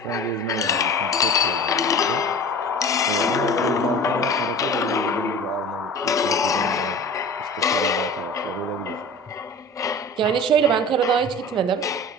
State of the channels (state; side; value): normal; both; correlation 0.38